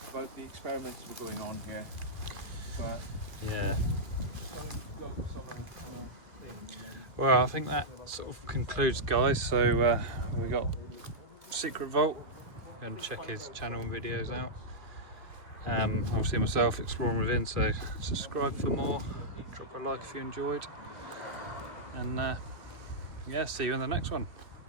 about the experiments that are going on here. Yeah. Well, I think that sort of concludes, guys. So we got Secret Vault. Go and check his channel and videos out. Obviously myself, Exploring Within. So subscribe for more. Drop a like if you enjoyed. And yeah, see you in the next one.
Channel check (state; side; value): late; left; 2.2 ms